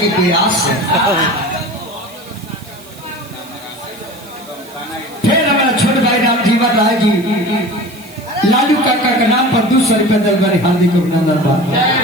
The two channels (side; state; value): right; noise; hiss, 22 dB below the sound